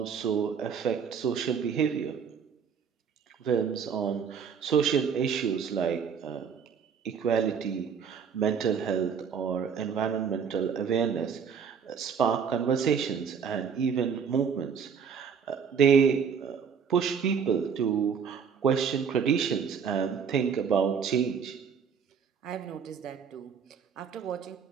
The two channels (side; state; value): left; quieter; 6.8 dB